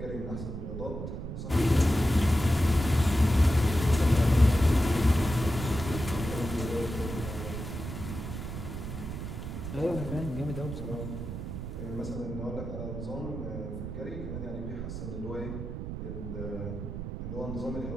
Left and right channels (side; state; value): right; noise; rumble, 6 dB below the sound